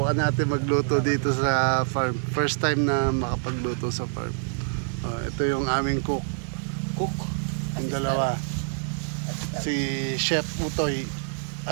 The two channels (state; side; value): silent; left; digital silence